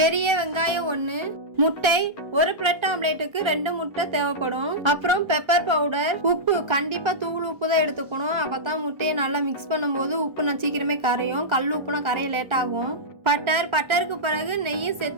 வெங்காயம் 1, முட்டை, ஒரு பிரெட் ஆம்லேட்டுக்கு 2 முட்டை தேவைப்படும். அப்புறம் பெப்பர் பவுடர், உப்பு, கண்டிப்பா தூள் உப்பு தான் எடுத்துக்கணும். அப்பதான் முட்டையை நல்லா மிக்ஸ் பண்ணும்போது உப்பு நான் சீக்கிரமே கரையும். கல் உப்புனா கரைய லேட் ஆகும். பட்டருக்கு பிறகு நெய்யும்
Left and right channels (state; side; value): late; left; 1.3 ms